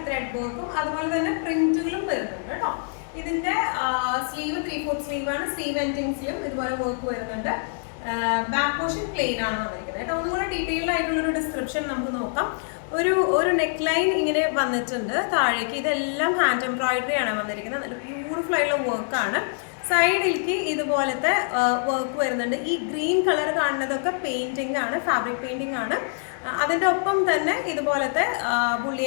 ത്രെഡ് വർക്കും അതുപോലെ തന്നെ പ്രിന്റുകളും വരുന്നുണ്ട് കേട്ടോ. ഇതിന്റെ സ്ലീവ് 3/4 സ്ലീവ് ആണ്. സ്ലീവ് എൻഡിങ്സിലും ഇതുപോലെ വർക്ക് വരുന്നുണ്ട്. ബാക്ക് പോർഷൻ പ്ലെയിൻ ആണ് വന്നിരിക്കുന്നത് കേട്ടോ. ഒന്നുകൂടെ ഡീറ്റെയിൽഡ് ആയിട്ടുള്ളൊരു ഡിസ്ക്രിപ്ഷൻ നമുക്ക് നോക്കാം. ഒരു നെക്ക് ലൈൻ ഇങ്ങനെ വന്നിട്ടുണ്ട് താഴേക്ക്. ഇതെല്ലാം ഹാൻഡ് എംബ്രോയിഡറി ആണ് വന്നിരിക്കുന്നത്. നല്ല ബ്യൂട്ടിഫുൾ ആയിട്ടുള്ള വർക്കാണ്. സൈഡിലേക്ക് ഇതുപോലത്തെ വർക്ക് വരുന്നുണ്ട്. ഈ ഗ്രീൻ കളർ കാണുന്നതൊക്കെ പെയിന്റിംഗ് ആണ്, ഫാബ്രിക് പെയിന്റിംഗ് ആണ്. അതിൻ്റെ ഒപ്പം തന്നെ ഇതുപോലത്തെ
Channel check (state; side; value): silent; right; digital silence